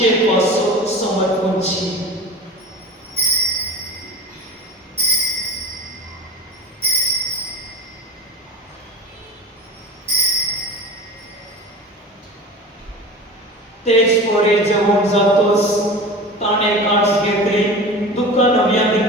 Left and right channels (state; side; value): normal; both; correlation 0.33